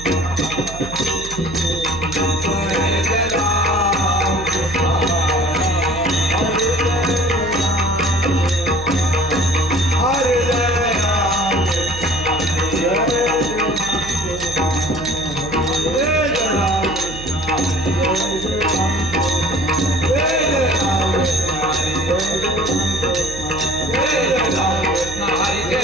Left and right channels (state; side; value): noise; right; hum, 13 dB below the sound